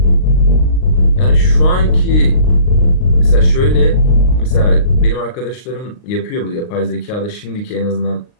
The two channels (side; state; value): right; late; 39 ms